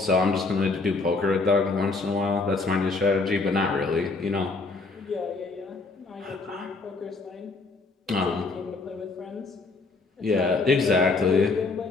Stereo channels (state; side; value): quieter; right; 3.8 dB